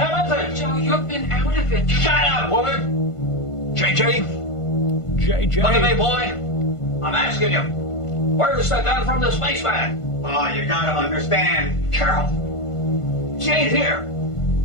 is it? Joe, you've been out of it. Shut up, woman. JJ? JJ? Look at me, boy. I'm asking you. Where's the gun from the spaceman? Oh, you gotta understand. Carol. She ain't here.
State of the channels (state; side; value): late; right; 1.5 ms